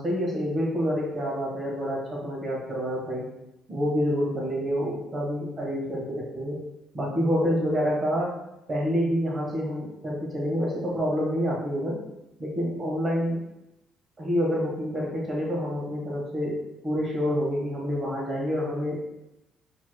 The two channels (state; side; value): normal; both; correlation 0.78